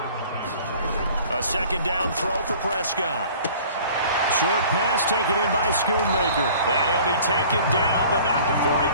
A 2nd down throw for Prescott. Short pass taken in by Schoonmaker. And he'll be taken down, but not before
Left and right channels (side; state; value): both; inverted; correlation -0.48